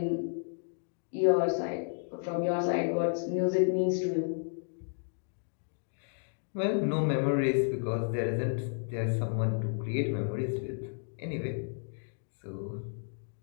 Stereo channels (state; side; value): silent; right; digital silence